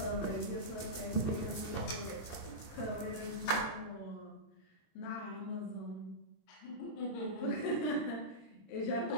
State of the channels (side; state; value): right; late; 26 ms